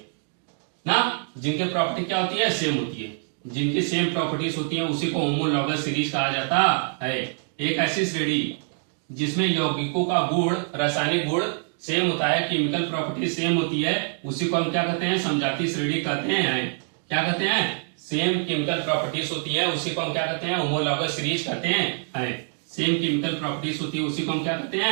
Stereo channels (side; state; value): left; silent; 56 dB below the other